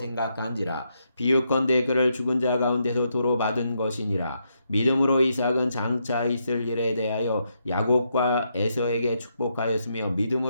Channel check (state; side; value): inverted; both; correlation -0.79